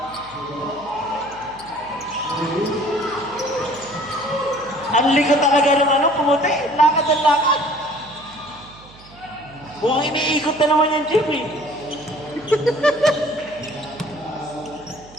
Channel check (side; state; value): right; noise; hum, 23 dB below the sound